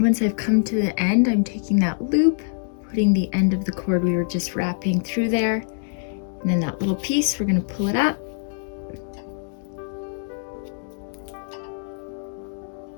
I've come to the end, I'm taking that loop, putting the end of the cord we were just wrapping through there, and then that little piece, we're going to pull it up.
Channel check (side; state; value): right; silent; digital silence